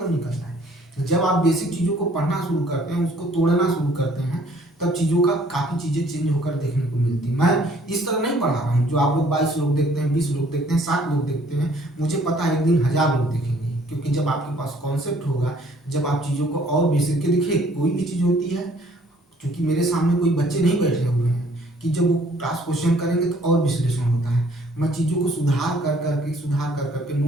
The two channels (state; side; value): normal; both; correlation 0.59